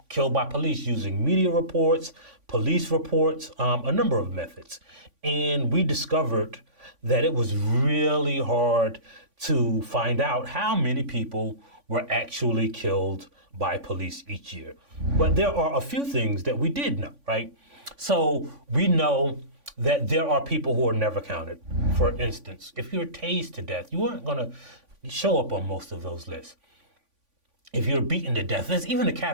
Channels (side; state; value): left; late; 3.5 ms